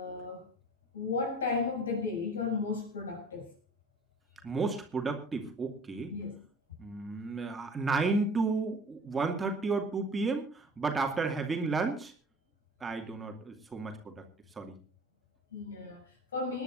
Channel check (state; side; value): normal; both; correlation 0.44